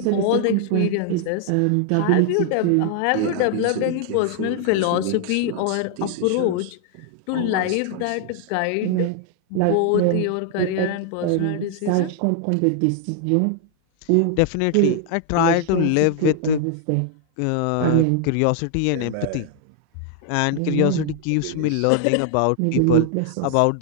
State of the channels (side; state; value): both; different; correlation 0.00